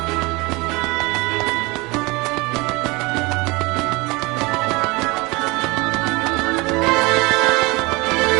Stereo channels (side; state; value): left; quieter; 24.8 dB